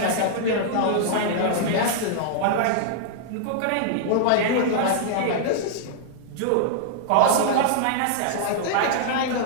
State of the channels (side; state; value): both; different; correlation -0.01